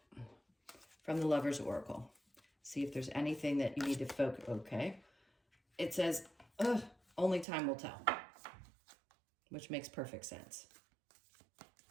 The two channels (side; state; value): left; drops out; at 7.5 s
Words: from the Lover's Oracle. See if there's anything that you need to focus, okay. It says, only time will tell, which makes perfect sense.